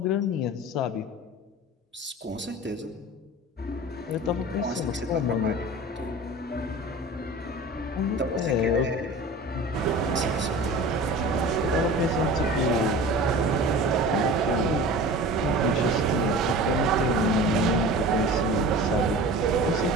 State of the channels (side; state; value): both; normal; correlation 0.37